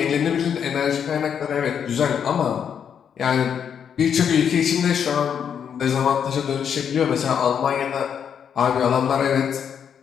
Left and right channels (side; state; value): right; quieter; 7.9 dB